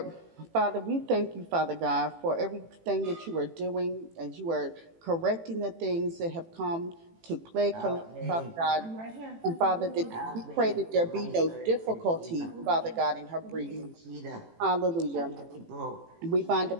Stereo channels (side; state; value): left; late; 18 ms